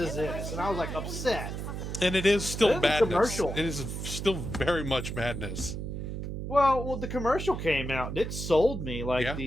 this? And I was like upset. And it is And still then the madness. commercial. It is still very much madness. Well, the commercial came out. It sold me. Like Yeah.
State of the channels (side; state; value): right; noise; hum, 5 dB below the sound